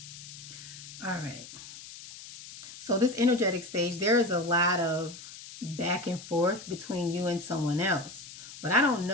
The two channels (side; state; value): left; noise; hiss, 14 dB below the sound